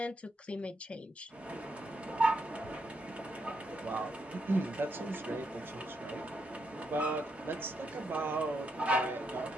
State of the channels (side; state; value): both; normal; correlation 0.80